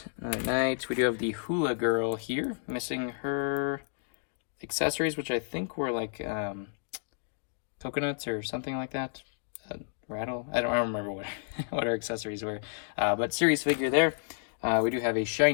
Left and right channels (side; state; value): right; silent; digital silence